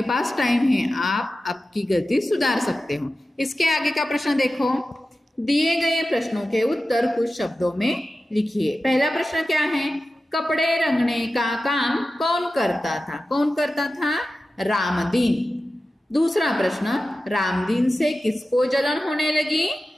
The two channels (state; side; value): normal; both; correlation 0.94